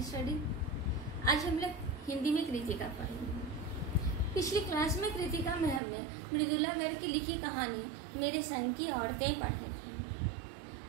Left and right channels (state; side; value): drops out; left; at 5.8 s